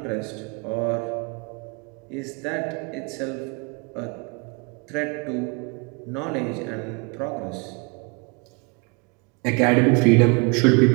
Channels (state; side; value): quieter; left; 31.6 dB